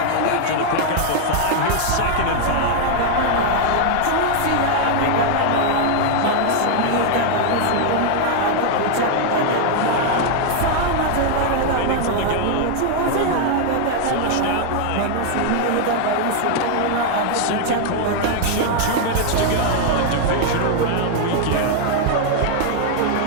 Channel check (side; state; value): both; different; correlation 0.00